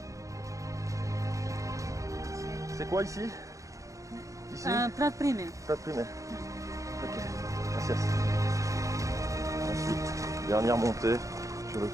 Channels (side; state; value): left; late; 0.16 ms